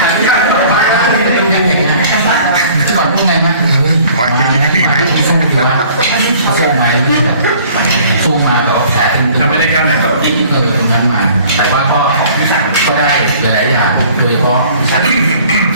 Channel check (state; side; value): inverted; both; correlation -0.52